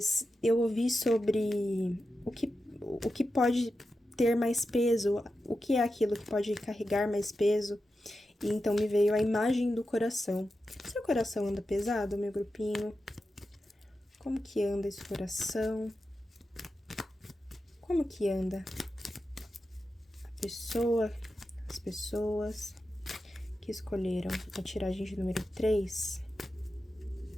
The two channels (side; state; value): both; normal; correlation 0.90